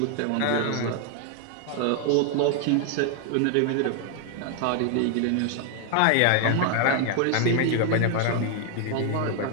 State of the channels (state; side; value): different; both; correlation 0.00